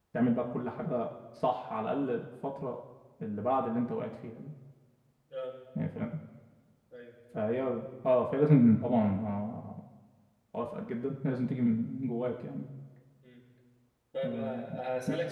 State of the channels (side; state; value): both; identical; correlation 1.00